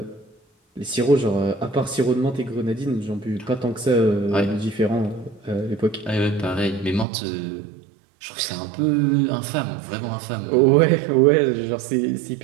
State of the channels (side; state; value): left; drops out; at 7.1 s